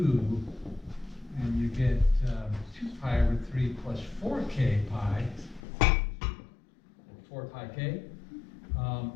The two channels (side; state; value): right; drops out; at 5.6 s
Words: and you get 2 pi over 3 plus 4k pi, 4 pi k,